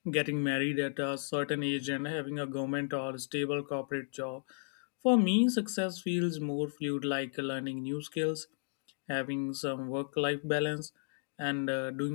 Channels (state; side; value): silent; right; digital silence